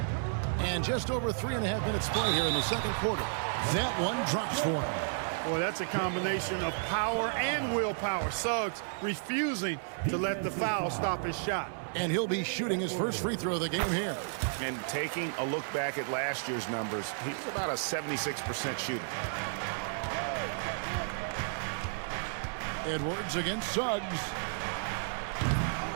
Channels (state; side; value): silent; left; digital silence